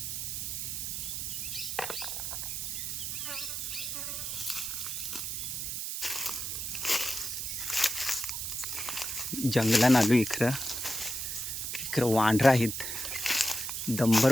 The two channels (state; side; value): noise; right; hiss, 3 dB below the sound